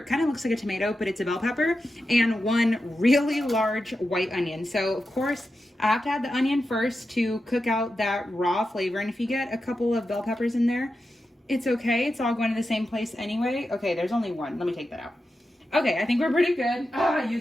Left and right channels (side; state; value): both; normal; correlation 0.90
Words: kind of looks like a tomato, but it's a bell pepper. And one really large white onion. So of course I have to add the onion first to cook out that raw flavor. And if you get a couple of bell peppers in there, it's okay. It's all going to the same place anyway. Okay, there's only one. Let me take that out. Okay, I think we're pretty good. Oh, I